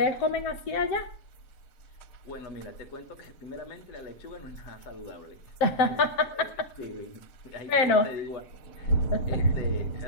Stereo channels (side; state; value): right; late; 7.4 ms